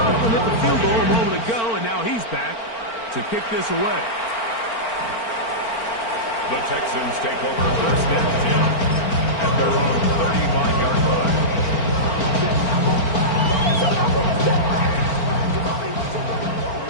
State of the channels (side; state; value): right; late; 4.4 ms